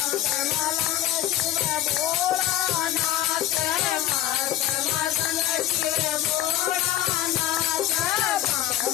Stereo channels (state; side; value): quieter; right; 12.8 dB